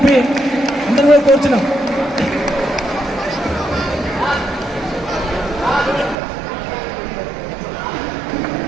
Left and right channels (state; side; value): drops out; left; at 6.2 s